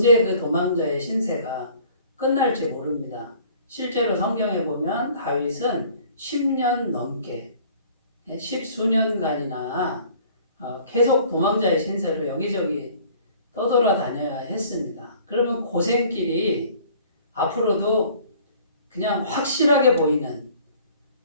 그 도망자의 신세가 끝날지 모릅니다. 실제로 성경에 보면 다윗은 10년 넘게 10수년간이나 계속 도망자의 신세로 여기저기 떠돌아다녀야 했습니다. 그러면 고생길이 앞으로도 그냥 확실하게 보이는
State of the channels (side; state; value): both; inverted; correlation -0.52